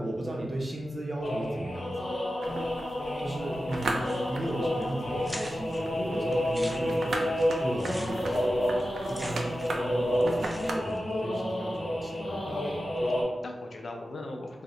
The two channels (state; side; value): normal; both; correlation 0.92